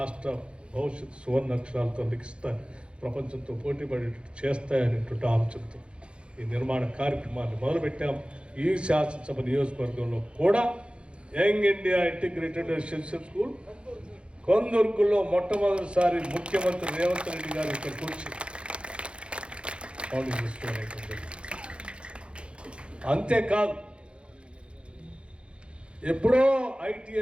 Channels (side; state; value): left; late; 0.057 ms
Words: భవిష్యత్తు సువర్ణ అక్షరాలతో లిఖిస్తాయి, ప్రపంచంతో పోటీపడేటట్టు చేస్తాయనేటువంటి ఆలోచనతో ఈ నిర్మాణ కార్యక్రమాన్ని మొదలుపెట్టాం. ఈ శాసనసభ నియోజకవర్గంలో కూడా young India integrated residential school కొందుర్గులో మొట్టమొదటిసారి ముఖ్యమంత్రి రేవంత్ రెడ్డి గారు ఇక్కడికి వచ్చి ఫౌండింగ్ చేసుకోవాలి. అంతేకాదు ఎప్పుడో